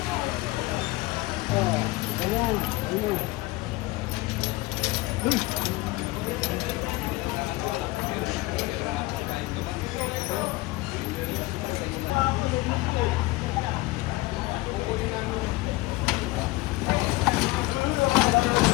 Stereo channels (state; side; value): quieter; right; 20.5 dB